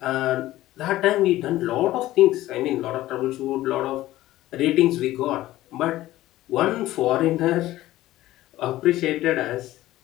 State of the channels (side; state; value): right; quieter; 15.7 dB